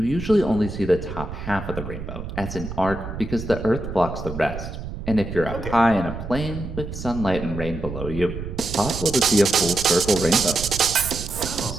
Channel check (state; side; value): noise; right; rumble, 8 dB below the sound